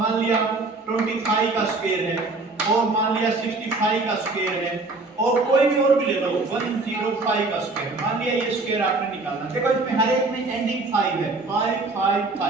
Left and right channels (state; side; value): quieter; left; 3.4 dB